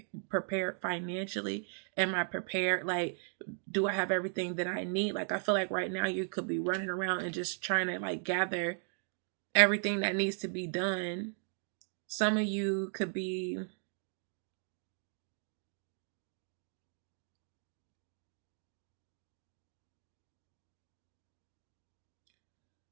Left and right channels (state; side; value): silent; left; 53 dB below the other